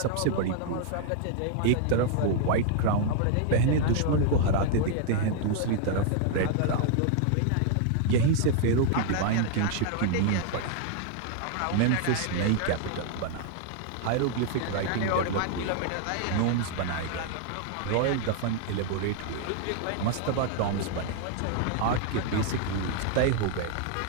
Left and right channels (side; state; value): both; different; correlation 0.00